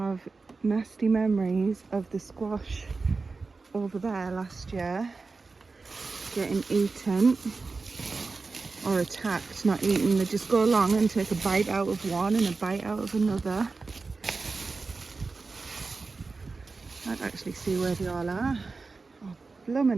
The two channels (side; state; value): left; quieter; 4.1 dB